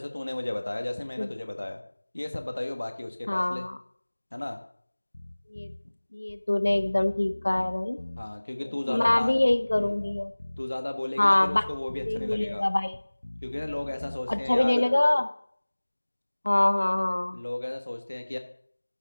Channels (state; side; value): inverted; both; correlation -1.00